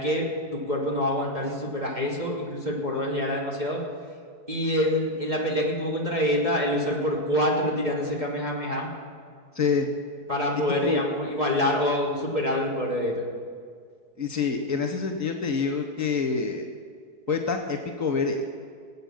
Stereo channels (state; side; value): late; left; 4.7 ms